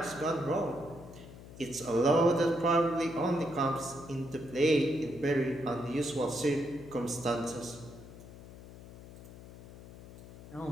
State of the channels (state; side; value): noise; left; hum, 16 dB below the sound